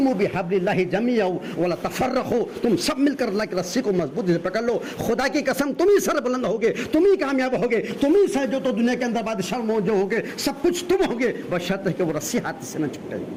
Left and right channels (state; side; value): identical; both; correlation 1.00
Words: بِحَبْلِ اللَّهِ جَمِيعًا وَلَا تَفَرَّقُوا, تم سب مل کر اللہ کی رسی کو مضبوط سے پکڑ لو. خدا کی قسم تم ہی سر بلند ہوگے, تم ہی کامیاب ہوگے, تم ہی سے جو تو دنیا کے اندر بادشاہ جو ہوگے, سب کچھ تم ہوگے, بشرط ہے کہ وہ رسی ہاتھ سے نہ چھوٹے.